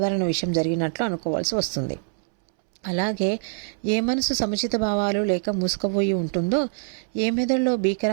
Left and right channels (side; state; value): left; silent; 62 dB below the other